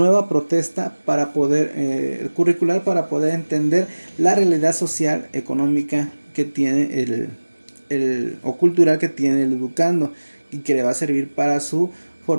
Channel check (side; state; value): both; inverted; correlation -1.00